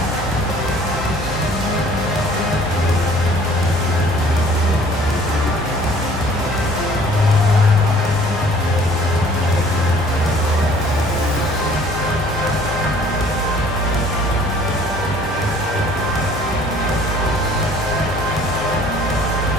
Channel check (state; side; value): normal; both; correlation 0.54